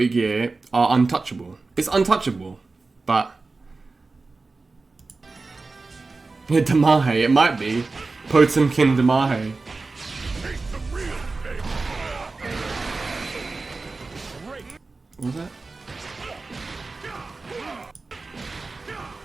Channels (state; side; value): quieter; left; 3.7 dB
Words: Gear are untouchable. It's untouchable, but yeah, Damahe, it might be Potemkin Damahe. What was that?